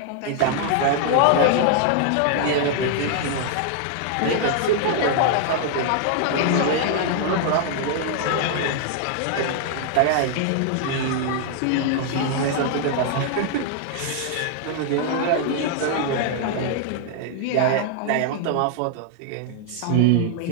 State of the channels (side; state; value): both; different; correlation 0.00